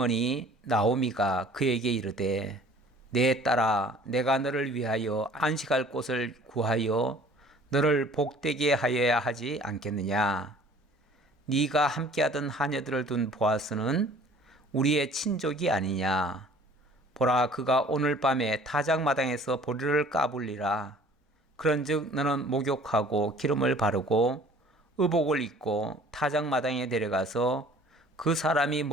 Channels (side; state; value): both; normal; correlation 0.51